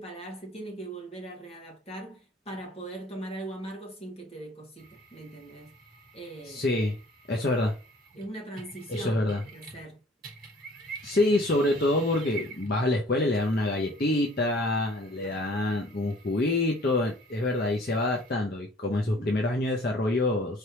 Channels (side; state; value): both; normal; correlation 0.53